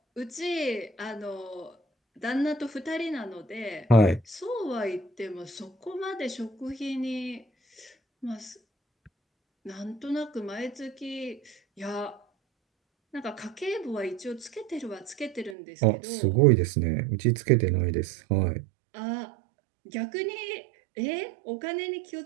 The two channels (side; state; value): left; drops out; at 15.6 s